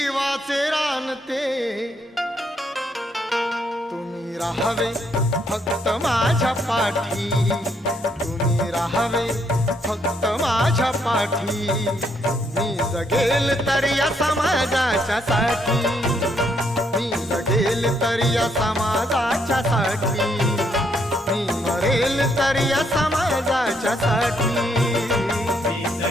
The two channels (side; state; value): both; normal; correlation 0.72